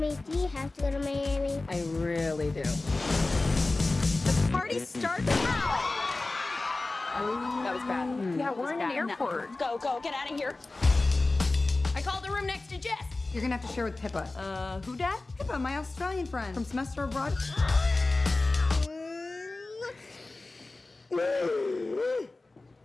do you have to go to Miami? I really do. The party starts now. That was bad. Yeah, we're in an airport. Go, get out of here. I called the room next to Jess. You're gonna have to share with Pippa. Who dat? Pippa, my Australian friend from semester abroad.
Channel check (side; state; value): right; quieter; 3.2 dB